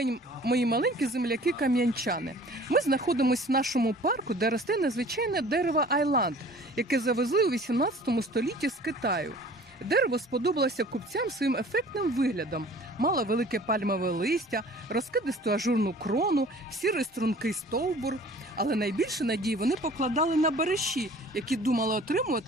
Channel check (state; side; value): normal; both; correlation 0.48